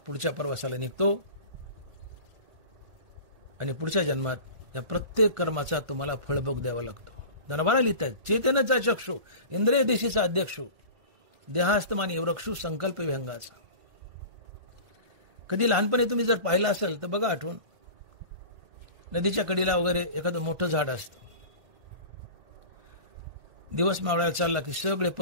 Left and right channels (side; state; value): left; late; 1.5 ms